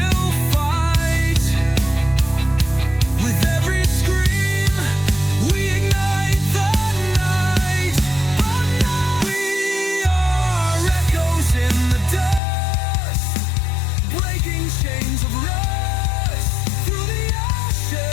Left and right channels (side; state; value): right; drops out; at 12.4 s